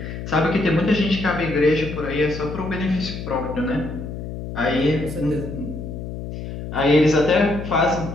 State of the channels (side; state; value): left; noise; hum, 8 dB below the sound